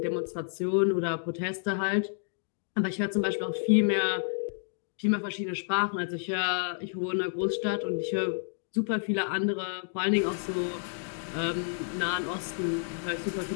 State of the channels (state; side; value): silent; right; digital silence